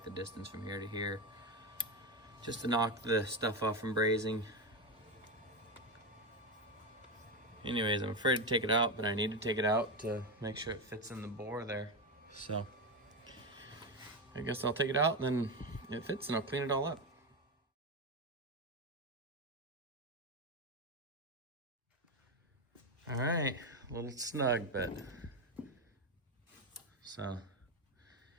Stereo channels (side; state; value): both; normal; correlation 0.13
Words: the distance from here to here, just to knock the stuff off from brazing. Anyways, I'm afraid to take it out, but I need to take it out to make sure it fits in the bore there. So I guess I'll take it out, and then it fits and I'll clean it all up. All right, a little snug, but so